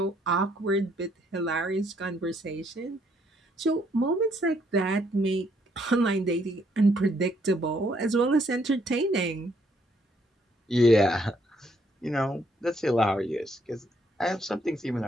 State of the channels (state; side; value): normal; both; correlation 0.70